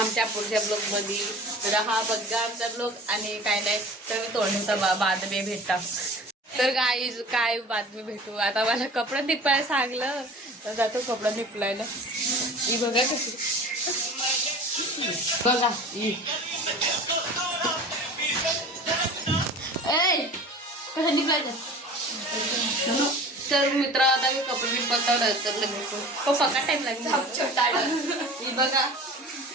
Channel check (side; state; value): both; normal; correlation 0.40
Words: पुढच्या ब्लॉगमध्ये तर हा बघा आमचा ब्लॉग आणि काय नाही तर मी तोंडचा बातमी भेटता. तर काय बातमी भेटू आता. मला कपडा निपायला सांगलं तर जातो कपडा निपलायला. ही बघा कशी बघा कसं निघायचं. तर मित्र आता मी कपडे निपलता तर भेटू पप्पा का टाइम लागेल. बघा